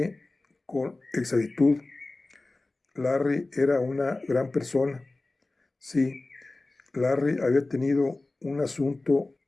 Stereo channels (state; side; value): quieter; right; 3.1 dB